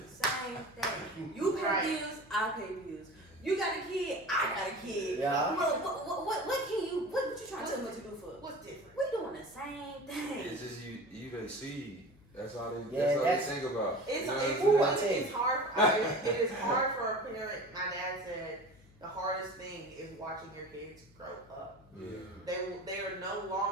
same thing. You pay bills, I pay bills. You got a kid, I got a kid. Yeah. What you trying to tell me to do for? What's different? We doing the same thing. It's just you they see. That's all they think about. It's hard. It is hard for a parent. My dad said the hardest thing is watching your kids grow up. Yeah. They are no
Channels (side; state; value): left; noise; hum, 25 dB below the sound